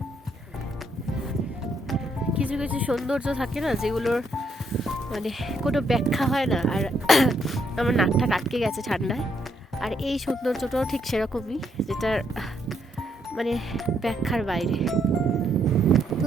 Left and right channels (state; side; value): normal; both; correlation 0.74